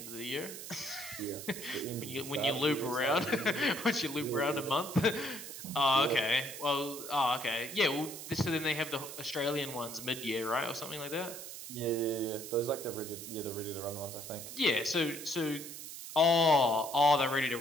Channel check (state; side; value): noise; right; hiss, 10 dB below the sound